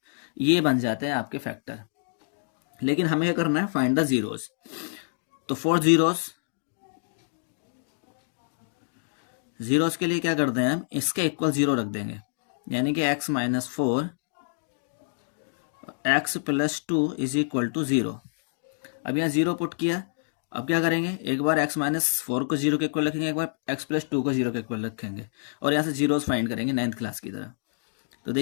ये बन जाते हैं आपके फैक्टर। लेकिन हमें क्या करना है, फाइंड द जीरोस। तो फॉर जीरोस जीरोस के लिए क्या करते हैं हम, इसके इक्वल 0 रख देंगे, यानी कि x minus 4 x plus 2 is equal to 0। अब यहाँ 0 पुट किया। अब क्या करेंगे, एक बार x माइनस 4 को 0 के इक्वल रखेंगे, एक बार x प्लस 2 को 0 के इक्वल रखेंगे, और यहाँ से जीरोस फाइंड करेंगे 9th क्लास की तरह। तो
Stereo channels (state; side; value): silent; right; digital silence